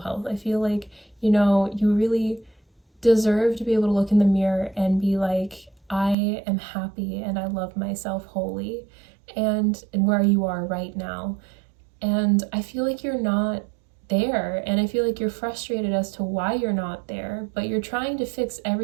I feel like, you really deserve to be able to look in the mirror and be like, I am happy and I love myself wholly, and where you are right now. And I feel like you're not there, and I feel like you're frustrated as to why you're not there, but you're trying to fix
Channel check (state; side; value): drops out; left; at 6.2 s